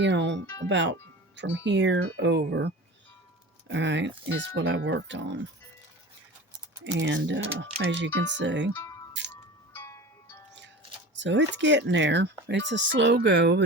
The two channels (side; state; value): both; normal; correlation 0.35